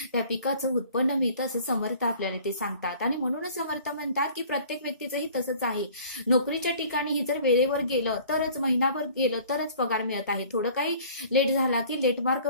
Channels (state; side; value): inverted; both; correlation -0.50